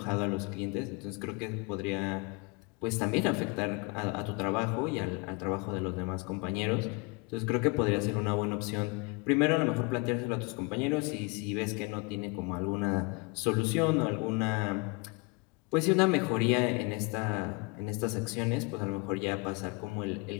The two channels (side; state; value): right; quieter; 28.9 dB